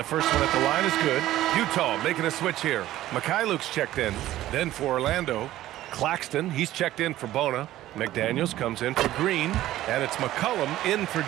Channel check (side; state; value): left; quieter; 14.5 dB